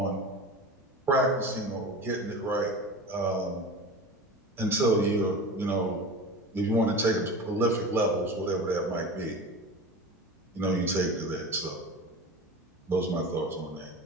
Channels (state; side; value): normal; both; correlation 0.31